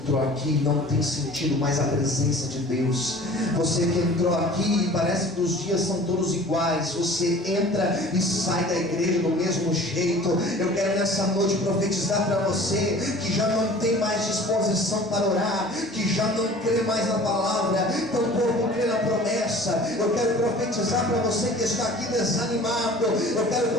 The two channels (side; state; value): both; normal; correlation 0.45